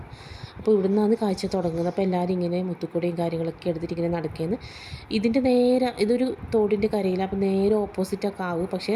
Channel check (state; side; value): identical; both; correlation 1.00